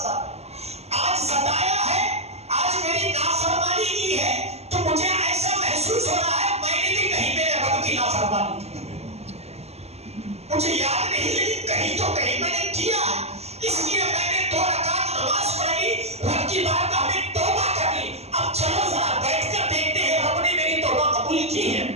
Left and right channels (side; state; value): left; late; 0.30 ms